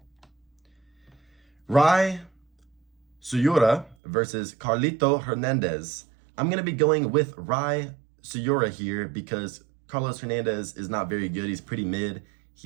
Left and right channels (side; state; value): left; drops out; at 4.0 s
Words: Rai Suyura versus Carlito Hernandez. I'm going to be going with Rai Suyura here because Carlos Hernandez is not very good. He's pretty mid.